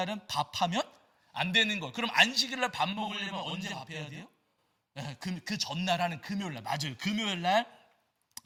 밥하면 안 되는 거. 그럼 안식일 날 밥 먹으려면 언제 밥해야 돼요? 그 전날 하는 금요일 날. 맞아요. 금요일 날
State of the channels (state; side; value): identical; both; correlation 1.00